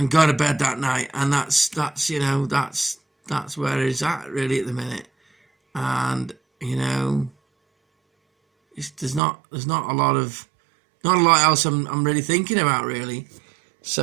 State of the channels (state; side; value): drops out; left; at 9.2 s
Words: go to bed that night. And that's that's where it's at really at the minute. And you know, there's not a lot else I'm really thinking about really.